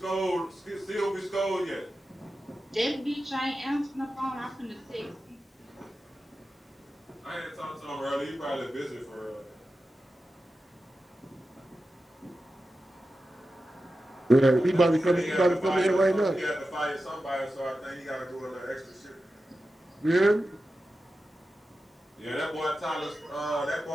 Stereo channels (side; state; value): both; normal; correlation 0.92